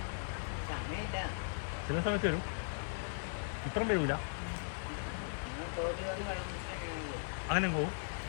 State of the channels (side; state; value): right; silent; 52 dB below the other